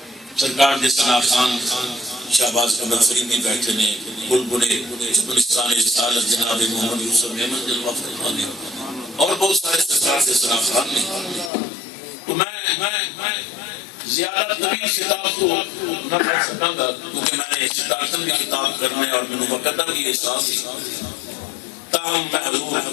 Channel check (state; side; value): drops out; right; at 11.5 s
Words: سرکار دے ثنا خان شہباز قمر فریدی بیٹھے نے بلبلے چپلستان رسالت جناب محمد یوسف احمد جلوہ فرمانے اور بہت سارے سرکار دے ثنا خان نے۔ تو میں زیادہ طویل خطاب تو نہ پڑھ سکاں گا کیونکہ میں نے اسٹارٹن بھی خطاب کرنے اور میں نے مقدم بھی احساس تاہم میں حضور